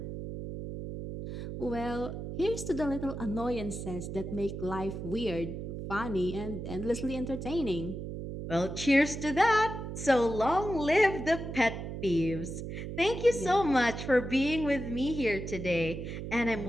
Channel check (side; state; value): right; noise; hum, 7 dB below the sound